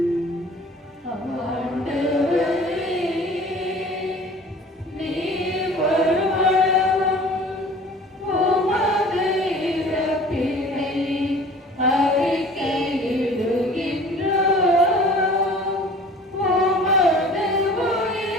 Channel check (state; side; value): normal; both; correlation 0.46